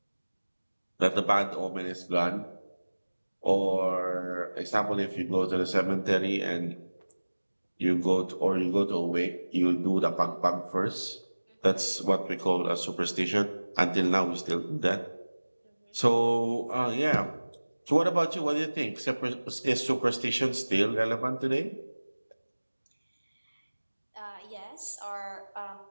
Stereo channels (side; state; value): both; inverted; correlation -1.00